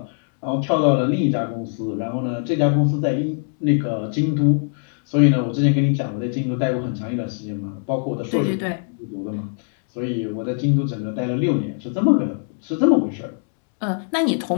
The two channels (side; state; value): right; silent; digital silence